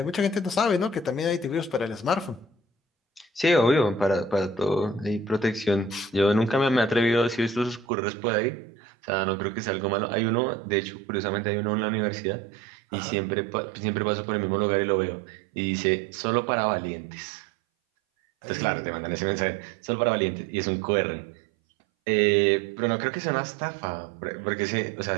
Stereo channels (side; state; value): left; drops out; at 7.9 s